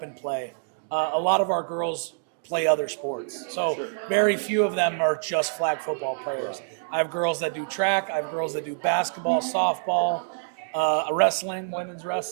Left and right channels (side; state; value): left; silent; digital silence